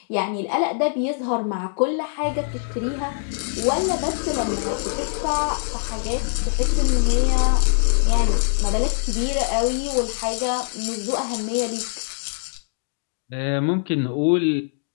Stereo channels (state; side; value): silent; right; digital silence